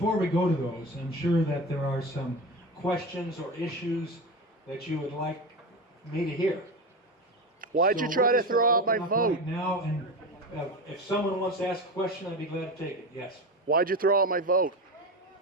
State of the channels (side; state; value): both; normal; correlation 0.23